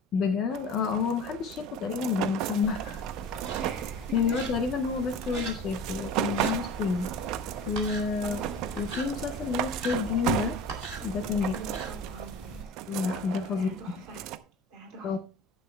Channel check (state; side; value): normal; both; correlation 0.38